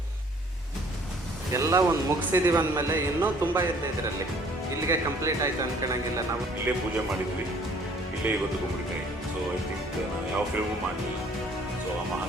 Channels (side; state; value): both; normal; correlation 0.57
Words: ಎಲ್ಲ ಒಂದು ಮುಗಿಸಿದೀವಿ ಅಂದಮೇಲೆ ಇನ್ನೂ ತುಂಬ ಇದೆ ಇದರಲ್ಲಿ. ಇಲ್ಲಿಗೆ ಕಂಪ್ಲೀಟ್ ಆಯಿತು ಅನ್ಕೊಳಂಗಿಲ್ಲ. ನಾವು ಇಲ್ಲೇ ಪೂಜೆ ಮಾಡಿದ್ವಿ, ಇಲ್ಲೇ ಇವತ್ತು ಗುಂಬಳಿಕಾಯಿ. ಸೊ ಐ ಥಿಂಕ್ ನಾವು ಯಾವ ಫಿಲ್ಮು ಮಾಡಲಿಲ್ಲ. ಸೊ ಆ